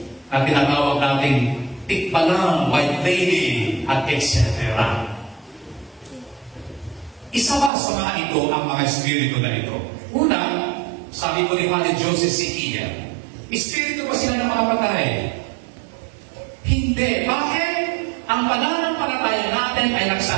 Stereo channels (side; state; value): left; drops out; at 7.7 s